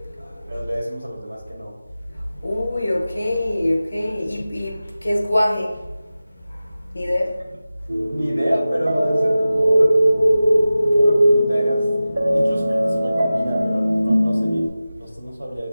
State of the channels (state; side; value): inverted; both; correlation -0.95